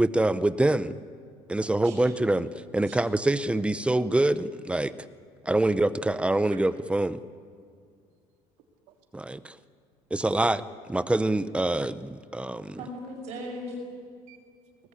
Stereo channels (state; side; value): normal; both; correlation 0.94